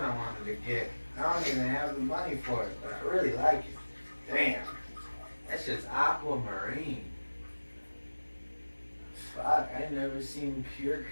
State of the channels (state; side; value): inverted; both; correlation -1.00